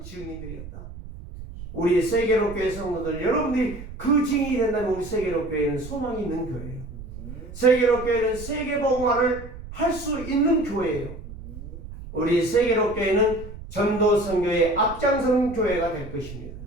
증인들이었다. 우리 세계로교회 성도들 여러분들이 그 증인이 된다면 우리 세계로교회는 소망이 있는 교회예요. 세계로교회는 세계복음화를 할 수 있는 교회예요. 우리 세계로교회는 전도 선교의 앞장서는 교회가 될 것입니다.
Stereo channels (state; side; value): noise; right; rumble, 13 dB below the sound